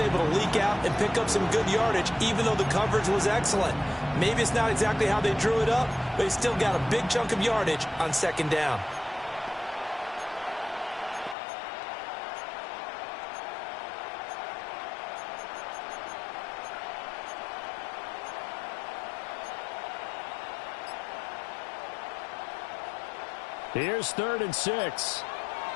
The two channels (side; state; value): right; drops out; at 11.4 s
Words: to leak out and pick up some good yardage, even though the coverage was excellent. Maybe it's not exactly how they drew it up, but he still got a big chunk of yardage on 2nd down. Here's 3rd and 6.